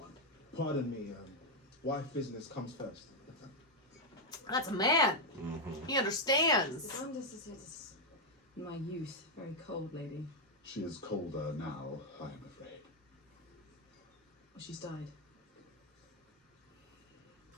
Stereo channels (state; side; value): normal; both; correlation 0.01